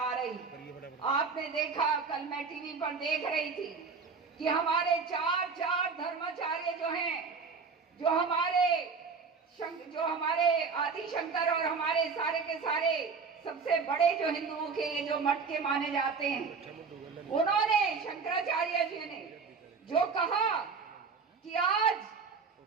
रही। आपने देखा, कल मैं टीवी पर देख रही थी कि हमारे चार धर्माचार्य जो हैं, जो हमारे आदि शंकर और हमारे सारे के सारे सबसे बड़े जो हिंदुओं के ये जो मठ के माने जाते हैं, उन्होंने, शंकराचार्य जी ने जो कहा कि आज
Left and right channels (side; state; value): left; quieter; 5.1 dB